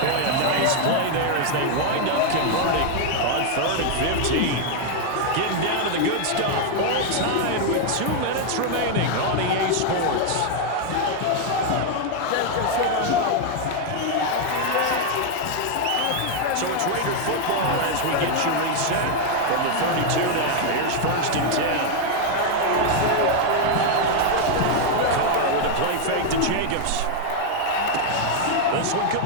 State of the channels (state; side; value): different; both; correlation 0.00